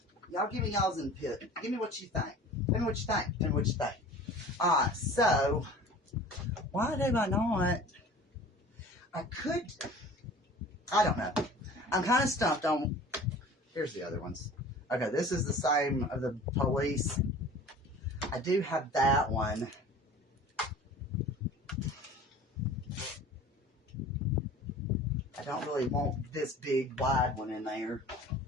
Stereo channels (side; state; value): both; normal; correlation 0.43